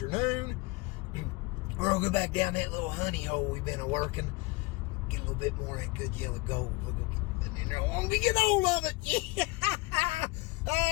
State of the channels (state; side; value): quieter; right; 23.9 dB